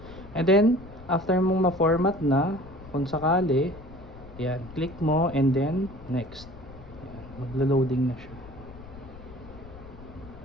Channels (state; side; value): noise; left; rumble, 17 dB below the sound